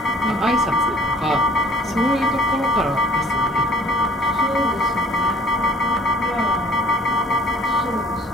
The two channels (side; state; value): both; normal; correlation 0.52